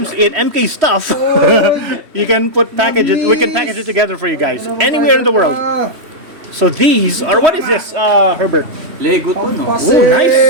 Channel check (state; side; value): late; left; 3.2 ms